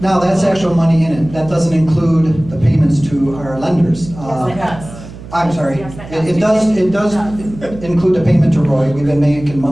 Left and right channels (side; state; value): right; noise; hum, 15 dB below the sound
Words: that's actual money in it. That doesn't include the payments to our lenders. Yes, it does. I'm sorry. Yes, it It does include the payment to Roy. We've been making